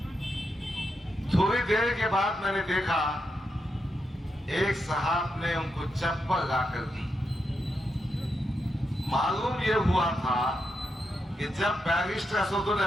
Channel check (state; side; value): normal; both; correlation 0.85